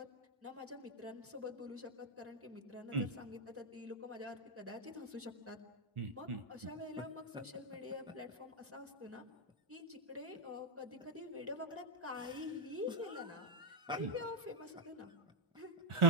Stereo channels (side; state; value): both; normal; correlation 0.02